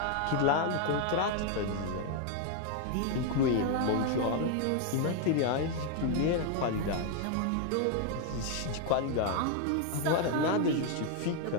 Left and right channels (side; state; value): both; different; correlation 0.01